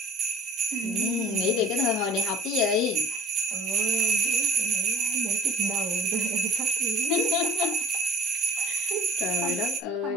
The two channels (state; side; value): normal; both; correlation 0.47